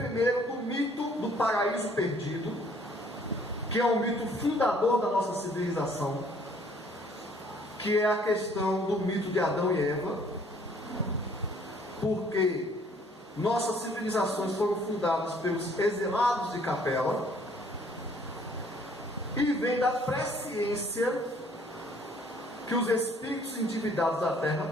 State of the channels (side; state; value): both; normal; correlation 0.60